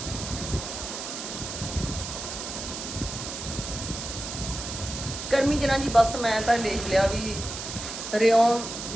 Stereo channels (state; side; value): noise; right; hiss, 7 dB below the sound